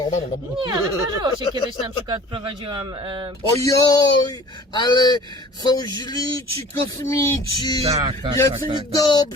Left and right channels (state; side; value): normal; both; correlation 0.47